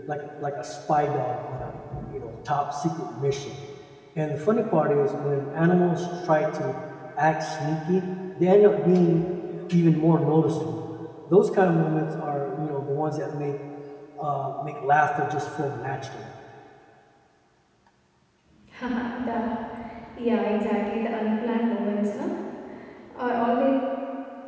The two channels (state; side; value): identical; both; correlation 1.00